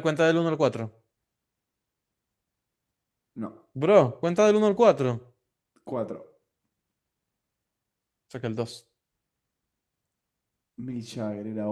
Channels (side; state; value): both; identical; correlation 1.00